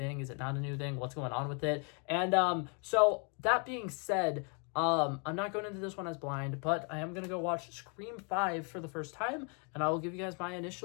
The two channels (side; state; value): right; quieter; 37.2 dB